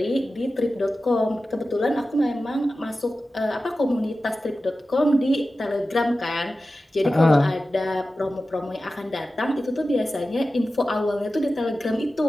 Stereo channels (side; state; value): both; normal; correlation 0.94